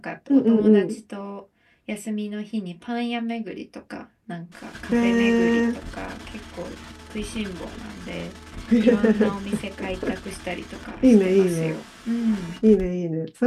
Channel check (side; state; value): both; identical; correlation 1.00